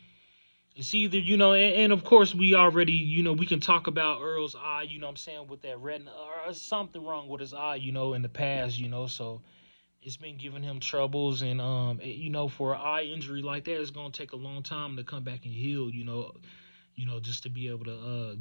It's either, and of course we already, we can talk about Earl's eye, you know what I'm saying, with that retina, or something wrong with his eye, in the past, so it's been giving him troubles, and, for an eye injury like that, it's going to take a long time to come back and heal, just to be able to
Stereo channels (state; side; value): inverted; both; correlation -1.00